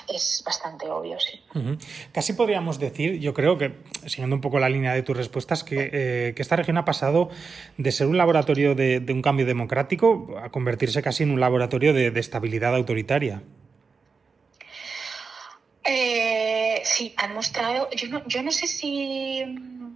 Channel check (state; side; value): quieter; left; 5.0 dB